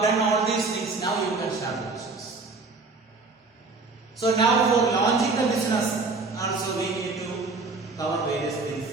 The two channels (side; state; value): left; quieter; 3.9 dB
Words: done all these things, now you can start the business. So now for launching the business, also we need to cover various